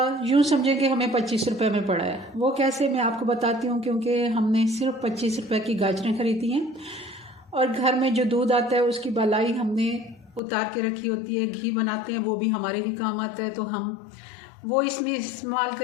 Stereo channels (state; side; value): drops out; right; at 10.4 s